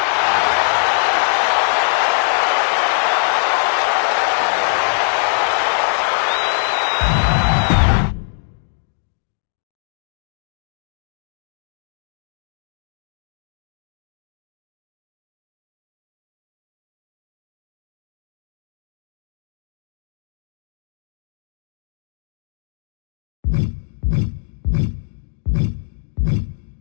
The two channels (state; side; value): silent; right; digital silence